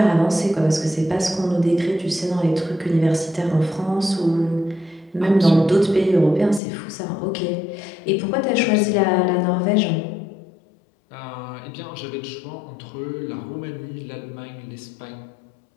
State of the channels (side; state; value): right; drops out; at 6.6 s